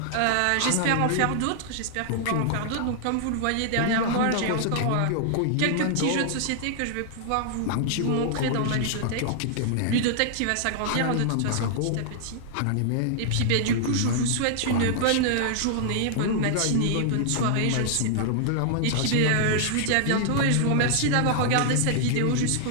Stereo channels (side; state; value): both; different; correlation -0.01